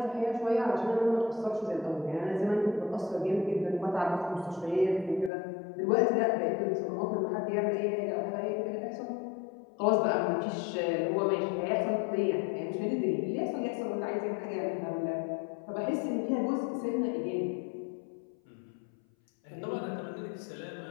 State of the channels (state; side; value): drops out; right; at 5.3 s